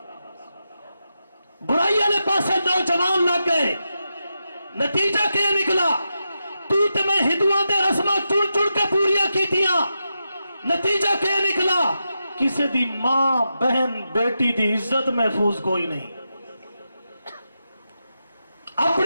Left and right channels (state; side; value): inverted; both; correlation -0.88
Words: برائی والے پاسے نوجوان لگ گئے۔ نتیجہ کیا نکلا؟ تو تے میں ہندوؤں دے رسمہ چڑ چڑ کے پوریاں کیتیاں، نتیجہ کیا نکلا؟ کسی دی ماں بہن بیٹی دی عزت محفوظ کوئی نہیں،